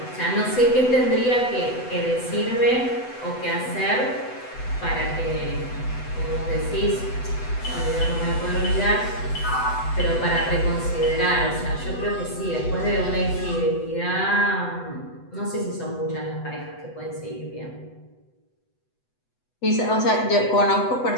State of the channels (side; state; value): right; late; 8.0 ms